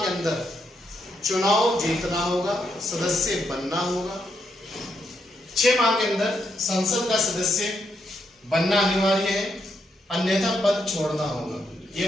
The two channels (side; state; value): both; normal; correlation 0.79